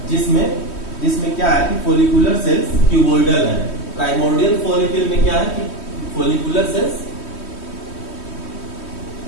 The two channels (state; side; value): late; right; 3.1 ms